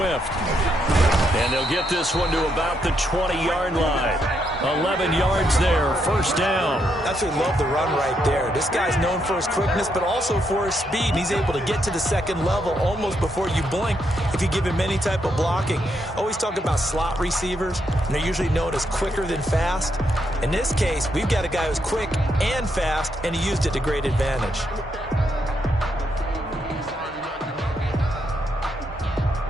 And they'll get this one to about the 20-yard line. 11 yards there, first down. Absolutely love the run right there. This guy's known for his quickness, but also for his speed. And he's able to get to the second level almost before you blink if you give him any type of blocking. Always talk about slot receivers, and they're usually known as quicker than fast. In this case, we've got a guy who's quick and fast, and he used it to great advantage.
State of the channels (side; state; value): both; normal; correlation 0.78